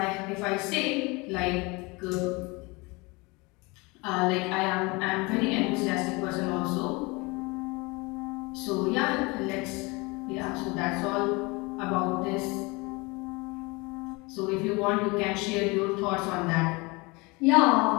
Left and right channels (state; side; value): quieter; right; 26.0 dB